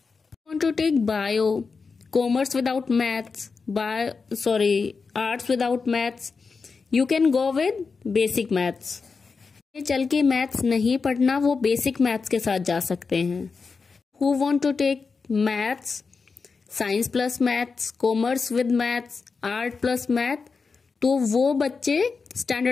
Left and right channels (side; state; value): right; quieter; 4.8 dB